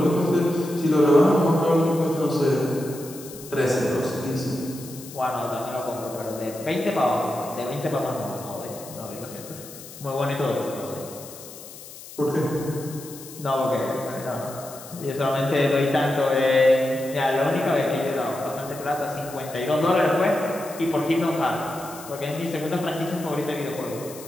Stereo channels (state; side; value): noise; left; hiss, 16 dB below the sound